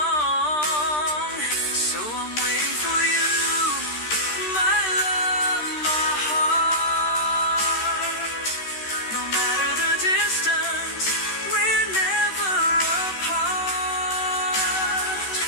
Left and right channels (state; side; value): late; right; 13 ms